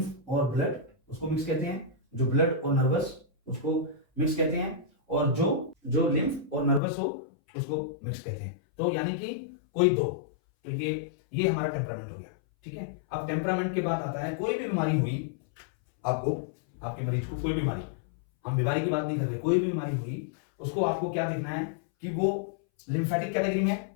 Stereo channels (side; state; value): right; drops out; at 6.8 s